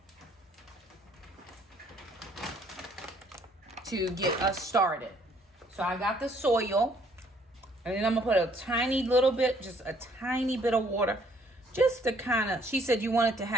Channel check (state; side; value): normal; both; correlation 0.63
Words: to get us started. So I got the soil And then I'm gonna put a tiny little bit, just a tiny bit of water, just to kind of, she said you want it to